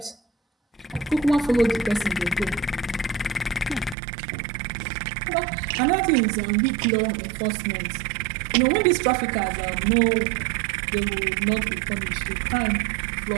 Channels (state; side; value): drops out; left; at 4.0 s